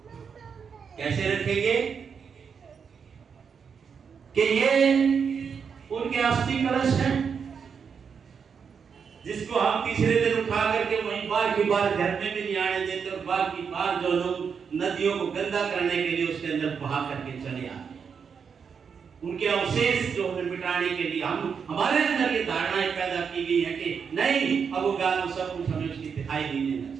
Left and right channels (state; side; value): quieter; left; 6.4 dB